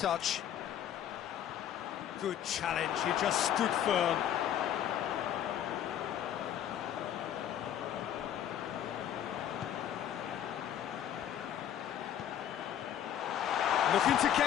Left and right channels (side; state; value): right; quieter; 10.3 dB